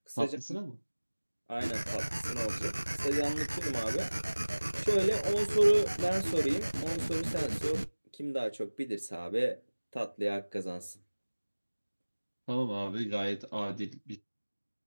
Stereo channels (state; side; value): inverted; both; correlation -1.00